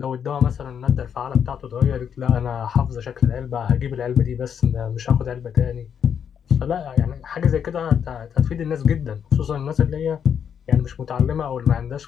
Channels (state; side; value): quieter; right; 7.9 dB